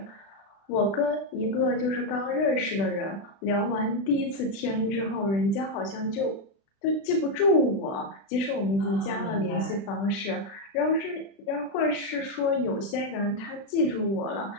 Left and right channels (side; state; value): right; late; 36 ms